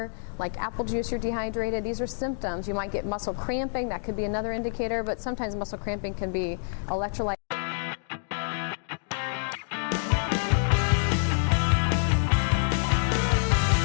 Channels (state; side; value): silent; right; digital silence